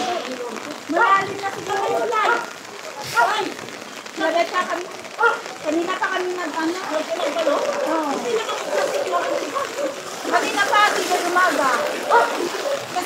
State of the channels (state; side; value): identical; both; correlation 1.00